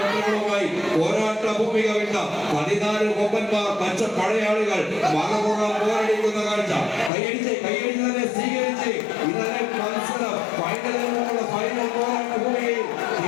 പോരാട്ട ഭൂമിക വിട്ട 14 കൊമ്പന്മാർ പച്ച പടയാളികൾ മറുപുറം പോരടിക്കുന്ന കാഴ്ച കൈയടിച്ച് തന്നെ സ്വീകരിച്ച് ഇന്നലെ മത്സരം ഫൈനലിനുള്ള ഫൈനൽ പോരാട്ട ഭൂമിയിൽ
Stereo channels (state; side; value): drops out; right; at 7.1 s